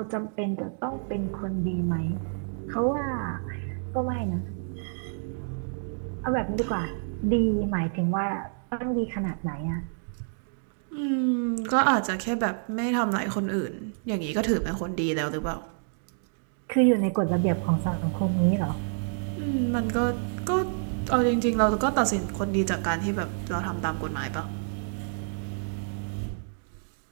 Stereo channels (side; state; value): left; silent; digital silence